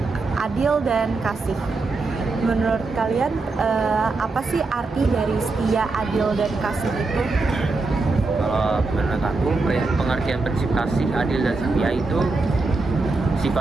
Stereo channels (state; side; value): quieter; left; 3.7 dB